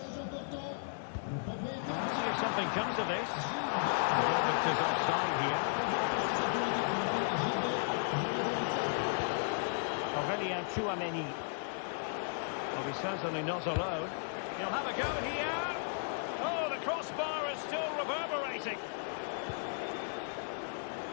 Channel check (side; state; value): right; silent; digital silence